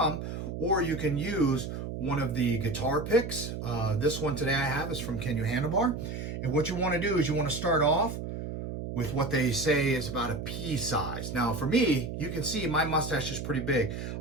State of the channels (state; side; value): noise; right; hum, 6 dB below the sound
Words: or you can use one of the guitar picks. This one today I have is from Kenyu Handlebar, and what you want to do is you want to start off with what they say is about a pea size. Now for me, you can see my mustache is pretty big.